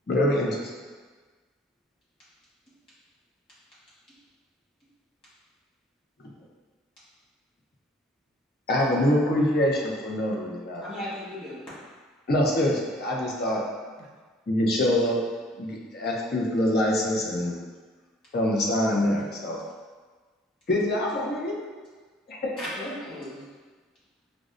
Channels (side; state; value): both; normal; correlation 0.56